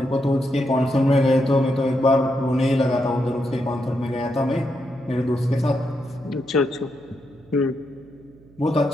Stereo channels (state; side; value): noise; right; hum, 26 dB below the sound